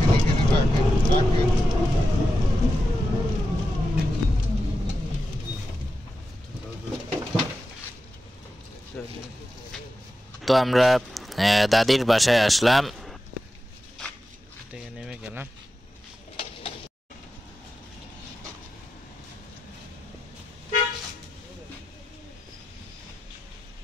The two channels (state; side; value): normal; both; correlation 0.91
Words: তো আমরা দাদির বাসায় আসলাম, নেমে গেলাম।